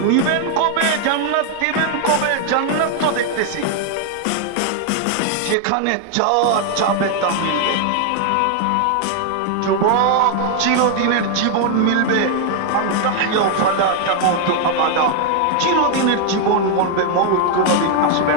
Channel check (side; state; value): both; different; correlation 0.00